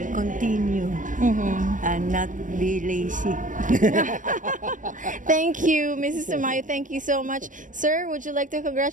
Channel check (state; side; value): late; left; 0.38 ms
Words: continue and not be lazy. Thank you, Mrs. Tamayo. Thank you so much. Sir, would you like to